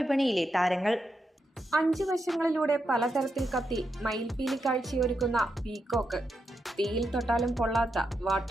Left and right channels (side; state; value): both; normal; correlation 0.84